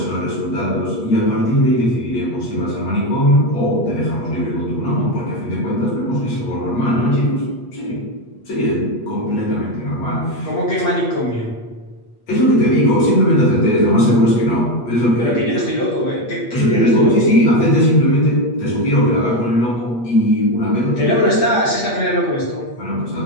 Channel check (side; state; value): right; late; 8.4 ms